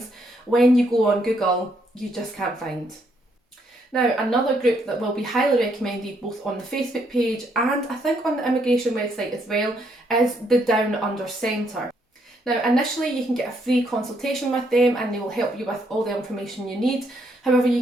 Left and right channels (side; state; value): both; normal; correlation 0.73